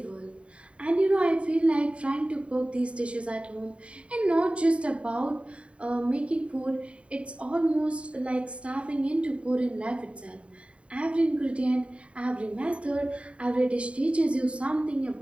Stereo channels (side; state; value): left; late; 0.061 ms